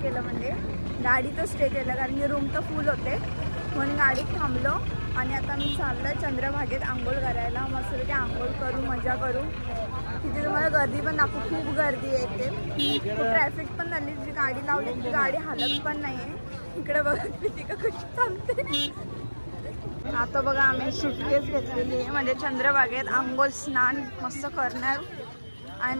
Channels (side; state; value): both; inverted; correlation -1.00